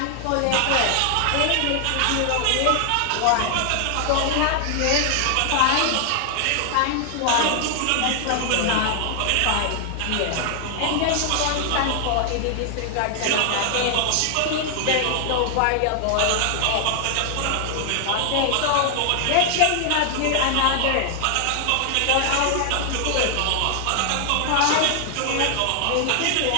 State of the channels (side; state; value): both; different; correlation 0.00